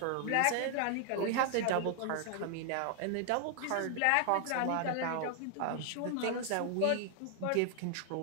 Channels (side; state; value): both; different; correlation 0.00